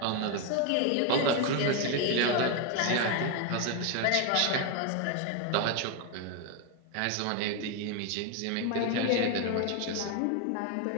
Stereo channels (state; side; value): different; both; correlation 0.01